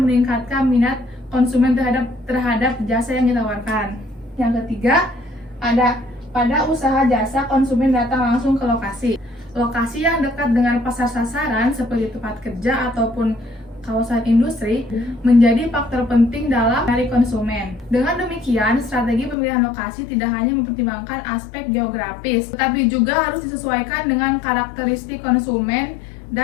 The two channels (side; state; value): right; drops out; at 19.4 s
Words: meningkatkan minat konsumen terhadap jasa yang ditawarkan. Yang ketiga ada pada usaha jasa konsumen datang langsung ke lokasi. Lokasi yang dekat dengan pasar sasaran seperti tempat kerja ataupun kawasan industri menjadi faktor penting dalam menarik konsumen. Dengan demikian, strategi pemilihan lokasi tidak hanya mempertimbangkan aspek geografis, tetapi juga harus disesuaikan dengan karakteristik konsumen